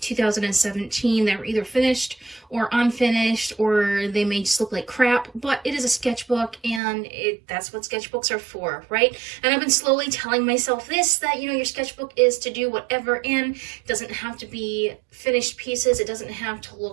2017 that were either finished or unfinished, or they may just look like crap, but it is a sketchbook and that's what sketchbooks are for, right? And I've been slowly telling myself this, that, you know, your sketchbook is to do whatever, and it doesn't have to be finished pieces, it doesn't have to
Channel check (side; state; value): left; drops out; at 6.8 s